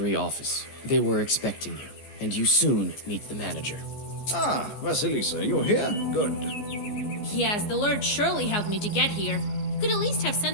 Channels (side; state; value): right; late; 14 ms